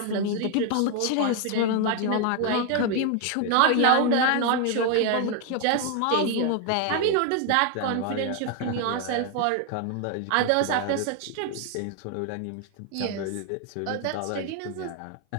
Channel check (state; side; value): different; both; correlation 0.01